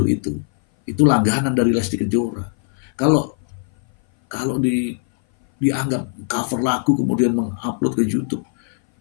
itu langganan dari Lesti Kejora. Kalau dianggap cover lagu kemudian mengupload ke YouTube,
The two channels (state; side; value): silent; right; 60 dB below the other